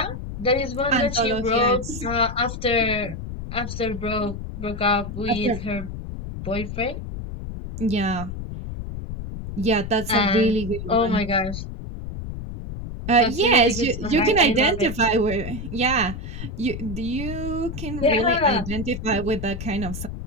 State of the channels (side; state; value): left; noise; rumble, 8 dB below the sound